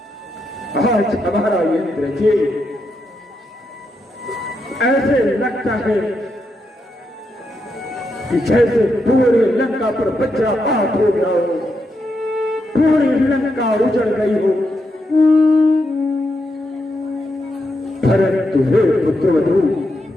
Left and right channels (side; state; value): both; normal; correlation 0.83